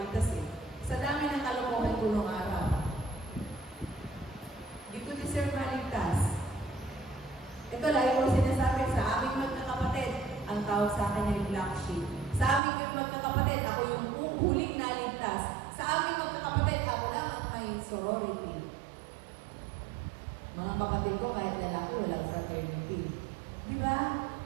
eh. Sa dami ng kalokohan ko nung araw. Hindi ko deserve maligtas. Ito, lagi ko sinasabi sa aming magkakapatid, ang tawag sa akin ay black sheep. Sa aming magkakapatid, ako yung sorority. Mga kapatid ko, kahit lalaki, walang fraternity. Di ba?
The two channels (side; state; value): left; drops out; at 12.6 s